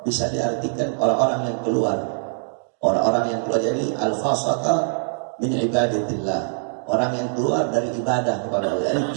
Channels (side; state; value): left; silent; digital silence